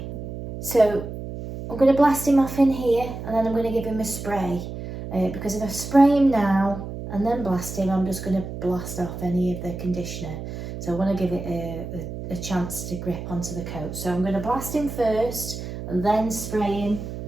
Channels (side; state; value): right; noise; hum, 8 dB below the sound